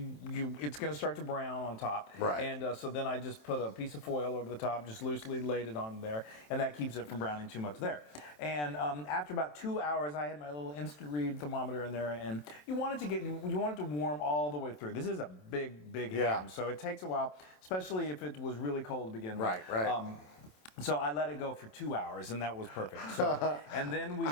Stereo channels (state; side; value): late; right; 27 ms